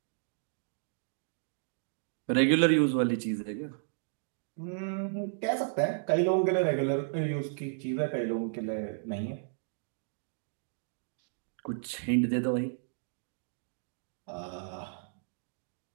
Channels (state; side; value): silent; left; digital silence